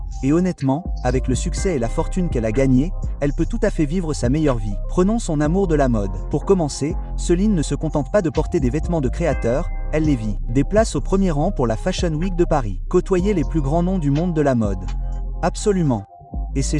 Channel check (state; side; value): identical; both; correlation 1.00